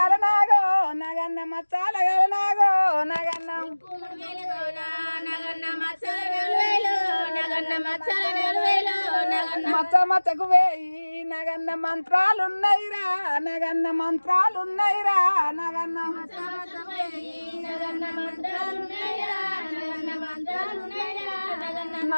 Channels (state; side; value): inverted; both; correlation -1.00